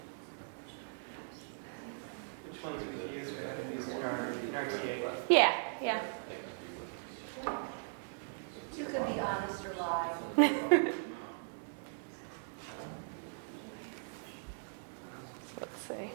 Which ones we use? We haven't used in our TA. Yeah, yeah. You could be honest or lie. Let's see.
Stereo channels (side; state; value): left; silent; digital silence